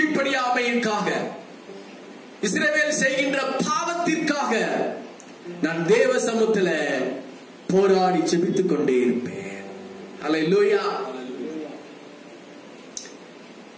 இஸ்ரவேல் செய்கின்ற பாவத்திற்காக நான் தேவ சமூகத்தில் போராடி ஜெபித்துக் கொண்டே இருப்பேன். அல்லேலூயா.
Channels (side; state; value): both; identical; correlation 1.00